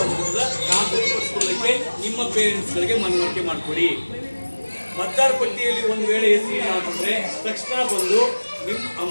ಅಂತ ಖಾತ್ರಿಪಡಿಸ್ಕೊಳ್ಳೋಕ್ಕೆ ನಿಮ್ಮ ಪೇರೆಂಟ್ಸ್ಗಳಿಗೆ ಮನವರಿಕೆ ಮಾಡಿಕೊಡಿ. ಮತದಾರ ಪಟ್ಟಿಯಲ್ಲಿ ಒಂದು ವೇಳೆ ಹೆಸರು ಏನಾಗ್ತಂದ್ರೆ ತಕ್ಷಣ ಬಂದು ನಿಮ್ಮ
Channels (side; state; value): both; inverted; correlation -1.00